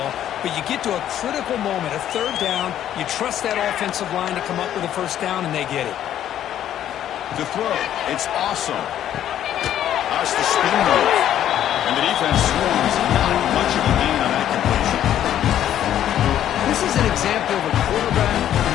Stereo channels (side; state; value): right; quieter; 11.1 dB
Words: but you get to a critical moment, a third down. You trust that offensive line to come up with a first down, and they get it. To throw, it's awesome. That's the spin move. And the defense swarms. Not much of a gain on that completion. This is an example of a quarterback